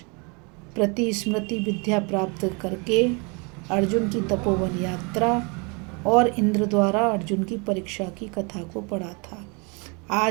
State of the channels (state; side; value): quieter; left; 31.6 dB